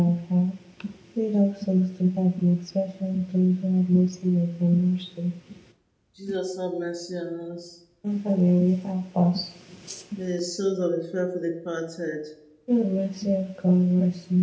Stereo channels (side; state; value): both; identical; correlation 1.00